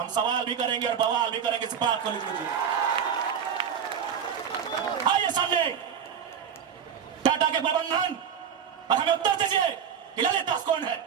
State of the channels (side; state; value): left; quieter; 7.9 dB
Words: सवाल भी करेंगे और बवाल भी करेंगे, इस बात को लिख लीजिए। आइए सामने टाटा के प्रबंधन और हमें उत्तर दीजिए कि ललित दास कौन है,